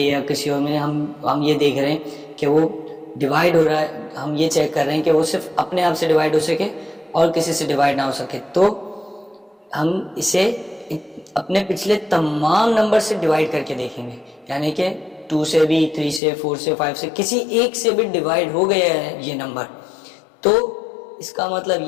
किसी और में हम ये देख रहे हैं कि वो डिवाइड हो रहा है। हम ये चेक कर रहे हैं कि वो सिर्फ अपने आप से डिवाइड हो सके और किसी से डिवाइड ना हो सके। तो हम इसे अपने पिछले तमाम नंबर से डिवाइड करके देखेंगे, यानी कि 2 से भी, 3 से, 4 से, 5 से, किसी एक से भी डिवाइड हो गया है ये नंबर, तो इसका मतलब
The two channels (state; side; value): drops out; right; at 16.2 s